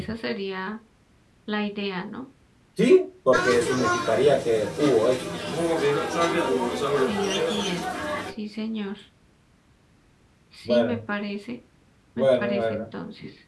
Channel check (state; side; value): identical; both; correlation 1.00